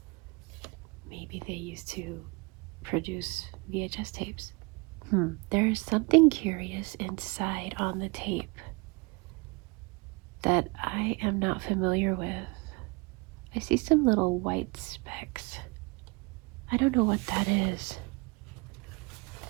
Maybe they used to produce VHS tapes. There's something curious inside on the tape that I am not familiar with. I see some little white specks. I don't know what that is.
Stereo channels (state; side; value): quieter; left; 27.4 dB